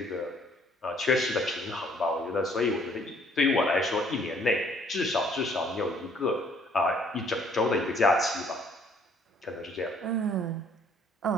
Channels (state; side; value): normal; both; correlation 0.61